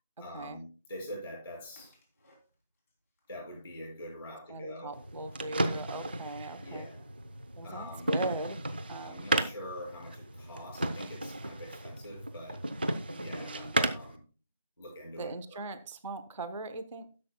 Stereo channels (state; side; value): inverted; both; correlation -0.68